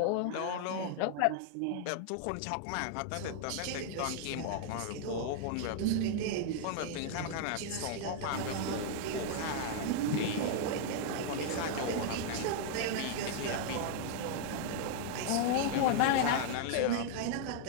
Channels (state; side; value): different; both; correlation 0.00